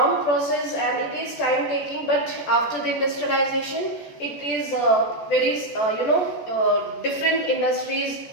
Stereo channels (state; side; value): late; right; 14 ms